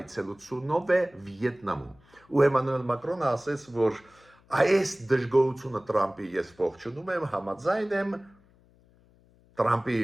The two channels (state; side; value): noise; left; hum, 30 dB below the sound